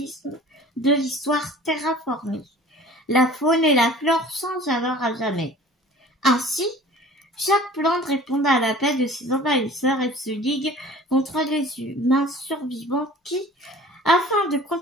de l'histoire terraformée. La faune et la flore changent alors à jamais. Ainsi, chaque plante répond à l'appel de ses envahisseurs et se ligue contre les humains survivants qui, afin de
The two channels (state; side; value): normal; both; correlation 0.45